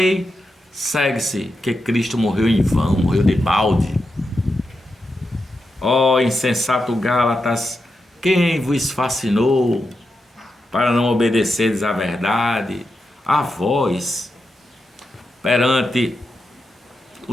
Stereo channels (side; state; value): both; normal; correlation 0.88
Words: segue-se que Cristo morreu em vão, morreu de balde. Ó insensato Gálatas, quem vos fascinou para não obedeceres à verdade? A vós, perante